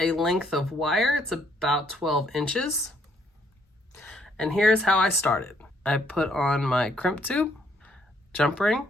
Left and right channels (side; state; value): both; normal; correlation 0.69